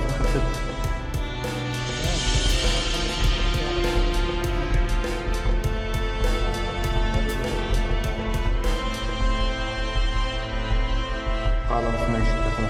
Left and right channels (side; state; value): both; identical; correlation 1.00